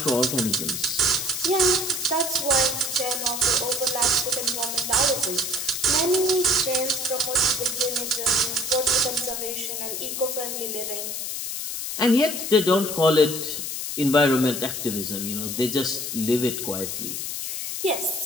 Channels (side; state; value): left; noise; hiss, 4 dB below the sound